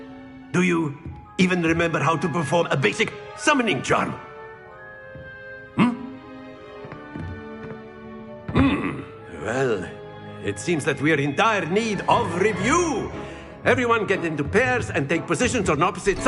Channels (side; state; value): both; identical; correlation 1.00